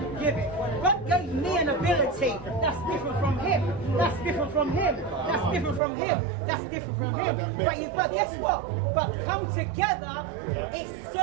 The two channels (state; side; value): drops out; left; at 5.8 s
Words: give it. God gave me an ability that's different from him. That's different from him. That's different from him. That's different from him. But guess what? But come together, it's